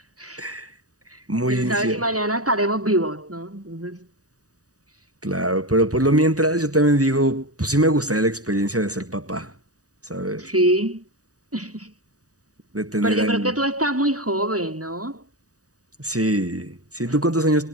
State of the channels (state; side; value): late; left; 0.66 ms